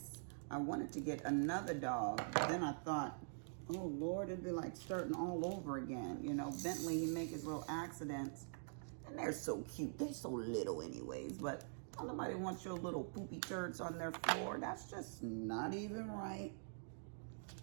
I wanted to get another dog. Then I thought, oh Lord, it'd be like starting all over again. You know, Bentley, he make his little accidents. And they're so cute, they're so little anyways. But nobody wants your little poopy turds on their floor. That's just not even right.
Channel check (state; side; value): silent; left; digital silence